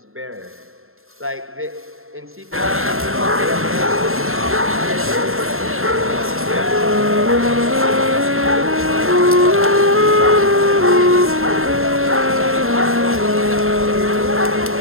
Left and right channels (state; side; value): late; left; 0.61 ms